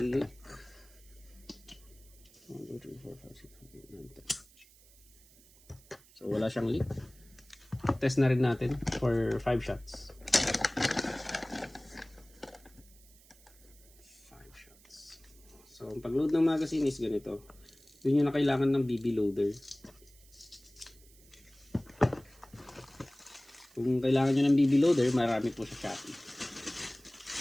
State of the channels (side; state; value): right; noise; hiss, 26 dB below the sound